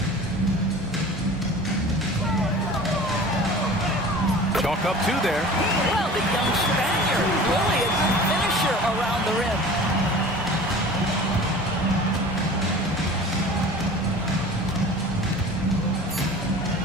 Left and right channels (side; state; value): both; normal; correlation 0.41